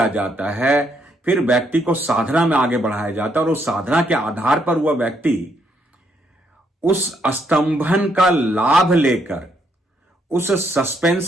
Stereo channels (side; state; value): both; normal; correlation 0.74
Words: जाता है, फिर व्यक्ति को साधना में आगे बढ़ाया जाता है और उस साधना के आधार पर वह व्यक्ति उस स्तंभन का लाभ लेकर, उस